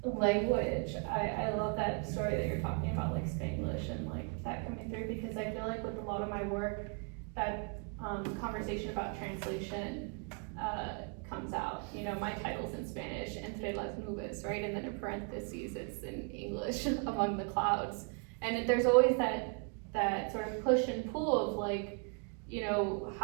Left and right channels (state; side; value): quieter; left; 38.7 dB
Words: language, I love that story that you're talking about, like Spanglish and like that coming through, because I feel like with a lot of my work, that conversation about translation comes out. You know, my title's in Spanish, entre las nubes, right? And then in parentheses, it's in English, among the clouds. And there's always that sort of push and pull of like, you know,